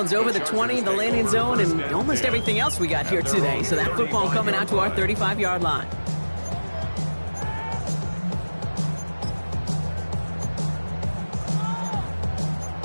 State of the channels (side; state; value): both; inverted; correlation -1.00